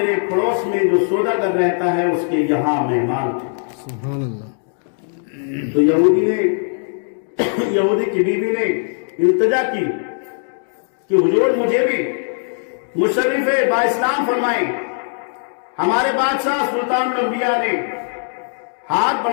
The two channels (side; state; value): right; silent; digital silence